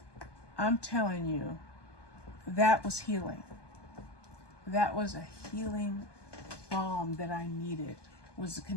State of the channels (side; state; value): right; late; 1.2 ms